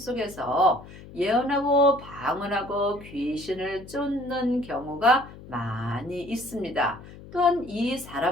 예언하고 방언하고 귀신을 쫓는 경우가 많이 있습니다. 또한 이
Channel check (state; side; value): noise; left; hum, 17 dB below the sound